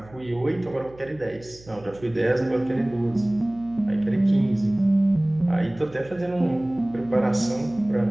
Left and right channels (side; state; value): right; noise; hum, 22 dB below the sound